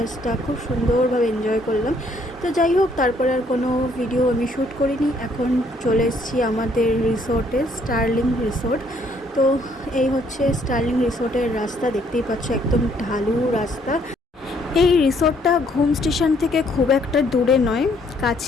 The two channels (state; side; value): normal; both; correlation 0.66